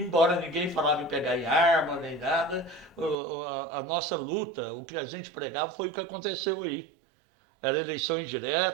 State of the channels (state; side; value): drops out; left; at 3.2 s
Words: ninguém falava em pegar em arma nem nada, a nossa luta, o que a gente pregava foi o que aconteceu aí. Era eleição